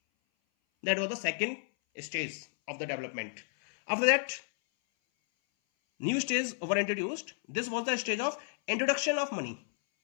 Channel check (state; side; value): silent; right; 56 dB below the other